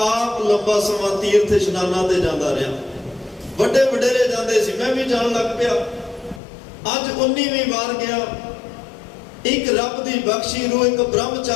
ਆਪ ਲੰਬਾ ਸਮਾਂ ਤੀਰਥ ਇਸ਼ਨਾਨਾਂ ਤੇ ਜਾਂਦਾ ਰਿਹਾ। ਵੱਡੇ ਵਡੇਰੇ ਜਾਂਦੇ ਸੀ, ਮੈਂ ਵੀ ਜਾਣ ਲੱਗ ਪਿਆ। ਅੱਜ 19ਵੀਂ ਵਾਰ ਗਿਆ। ਇੱਕ ਰੱਬ ਦੀ ਬਖਸ਼ੀ ਰੂਹ ਇੱਕ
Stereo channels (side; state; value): right; drops out; at 6.4 s